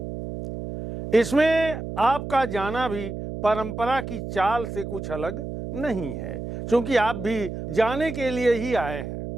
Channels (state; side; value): noise; right; hum, 7 dB below the sound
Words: इसमें आपका जाना भी परंपरा की चाल से कुछ अलग नहीं है, क्योंकि आप भी जाने के लिए ही आए हैं।